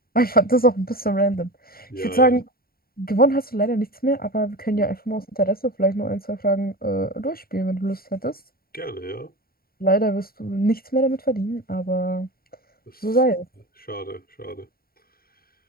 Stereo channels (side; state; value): right; late; 0.43 ms